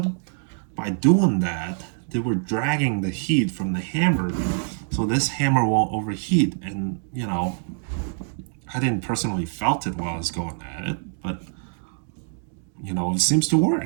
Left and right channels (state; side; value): silent; left; digital silence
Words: By doing that, they were dragging the heat from the hammer, so this hammer won't overheat. And you know, I didn't personally felt it while I was going at it, but you know, it seems to